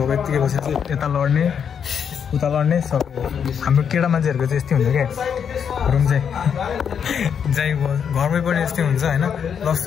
यत्तिकै बसेर चाहिँ यता लड्ने उता लड्ने सब हाम्रो केटा मान्छेहरूको चाहिँ यस्तै हुन्छ क्या रुम चाहिँ जाइ घरमै पनि यस्तै हुन्छ होइन प्लस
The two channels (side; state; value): right; quieter; 7.5 dB